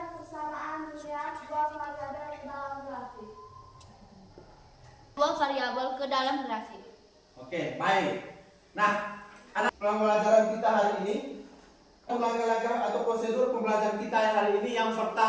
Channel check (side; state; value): both; identical; correlation 1.00